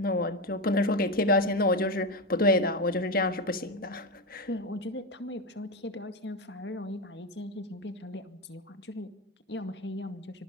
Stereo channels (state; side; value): normal; both; correlation 0.14